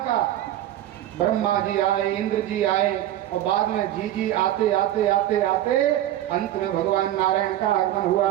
ब्रह्मा जी आए, इंद्र जी आए, और बाद में जी आते आते आते आते अंत में भगवान नारायण का आगमन हुआ।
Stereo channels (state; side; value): quieter; left; 13.1 dB